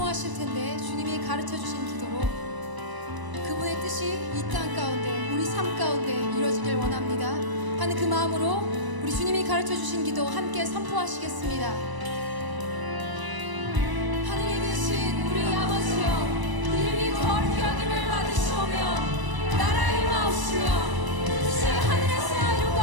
텐데 주님이 가르쳐 주신 기도로 그분의 뜻이 이 땅 가운데, 우리 삶 가운데 이루어지길 원합니다 하는 그 마음으로 우리 주님이 가르쳐 주신 기도 함께 선포하시겠습니다. 하늘에 계신 우리 아버지여, 이름이 거룩히 여김을 받으시오며 나라의 임하옵시며 뜻이 하늘에서 이룬 것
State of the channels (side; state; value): left; late; 1.0 ms